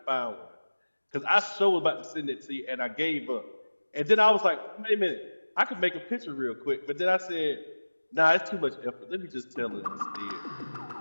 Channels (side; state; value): both; inverted; correlation -1.00